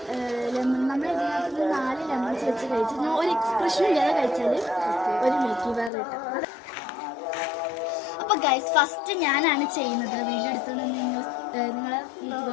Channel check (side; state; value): right; drops out; at 5.9 s